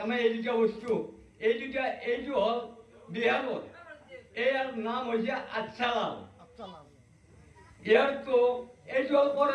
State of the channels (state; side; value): identical; both; correlation 1.00